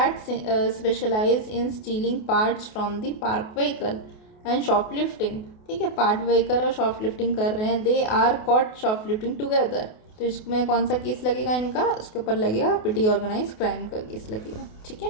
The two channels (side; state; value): right; late; 28 ms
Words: specialize in stealing parts from the parked vehicle and shoplifting, ठीक है। पार्ट व्हीकल और शॉपलिफ्टिंग कर रहे हैं, they are caught shoplifting together, तो इसमें कौन सा केस लगेगा इनका? उसके ऊपर लगेगा पिटी ऑर्गेनाइज क्राइम का केस लगेगा, ठीक है।